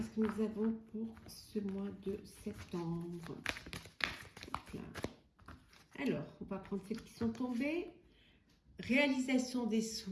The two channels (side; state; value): both; identical; correlation 1.00